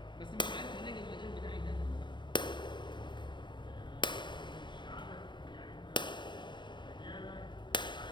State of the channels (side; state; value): right; late; 0.22 ms